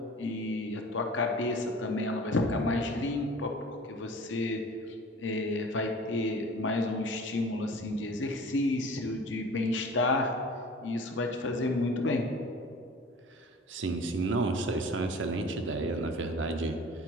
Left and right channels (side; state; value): both; normal; correlation 0.43